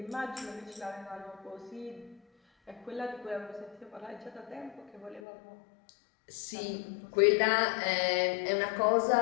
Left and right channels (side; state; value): right; drops out; at 5.2 s